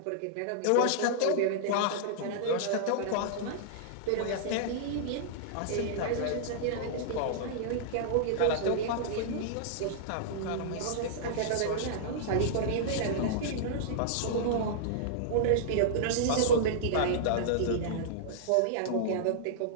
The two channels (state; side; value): different; both; correlation -0.02